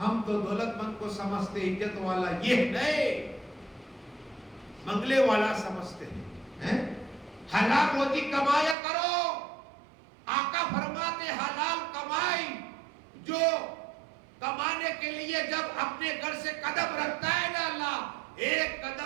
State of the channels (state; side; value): drops out; left; at 8.8 s